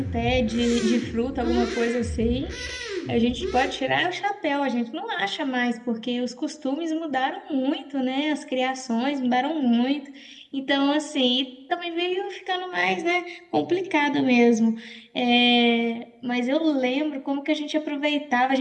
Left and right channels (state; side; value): identical; both; correlation 1.00